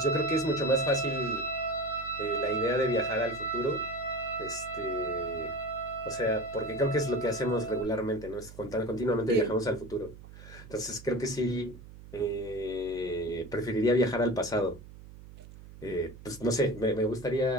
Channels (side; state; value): right; noise; hum, 17 dB below the sound